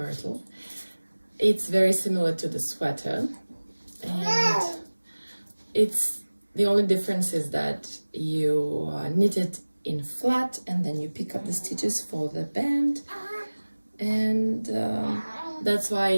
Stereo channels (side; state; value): both; inverted; correlation -1.00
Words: It's very similar to the sweater, and it's the only difference is that you knit it in flat and then you pick up the stitches for the band, and that's why